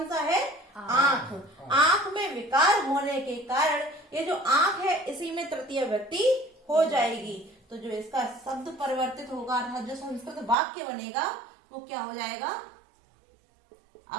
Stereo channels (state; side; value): drops out; left; at 10.6 s